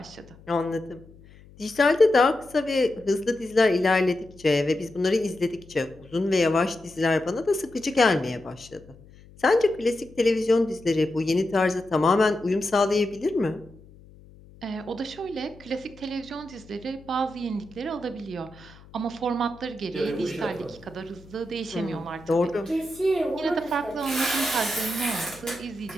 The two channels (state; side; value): noise; left; hum, 23 dB below the sound